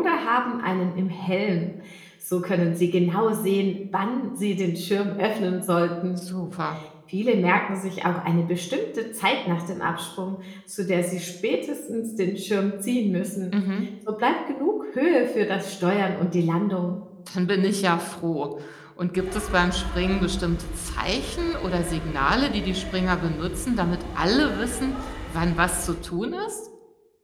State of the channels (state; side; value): identical; both; correlation 1.00